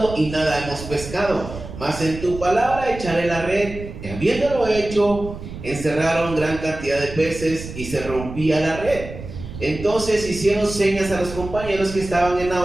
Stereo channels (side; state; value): right; noise; rumble, 11 dB below the sound